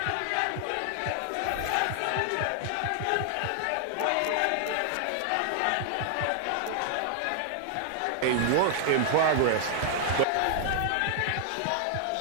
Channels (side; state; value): both; different; correlation -0.01